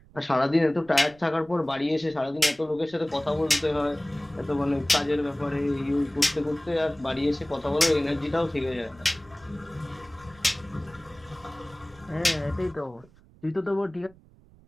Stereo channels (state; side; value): noise; right; rumble, 26 dB below the sound